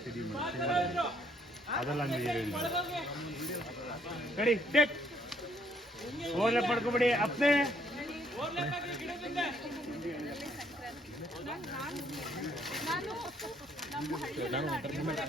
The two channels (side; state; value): both; normal; correlation 0.67